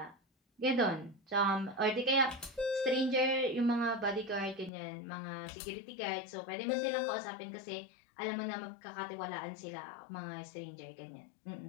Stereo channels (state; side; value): drops out; right; at 4.7 s